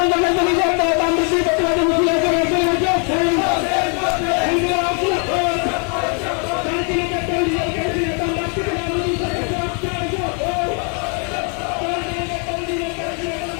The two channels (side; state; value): right; quieter; 39.1 dB